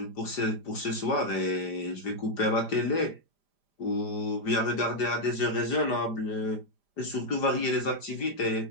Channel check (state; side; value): late; right; 5.0 ms